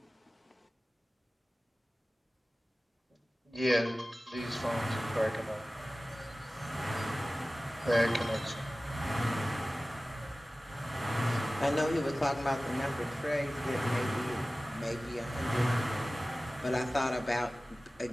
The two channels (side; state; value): both; normal; correlation 0.97